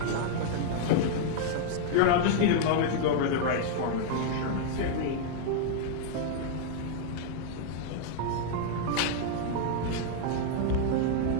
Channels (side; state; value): both; different; correlation -0.01